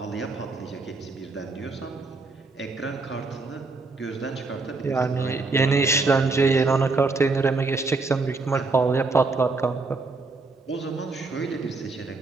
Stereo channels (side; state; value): left; quieter; 3.8 dB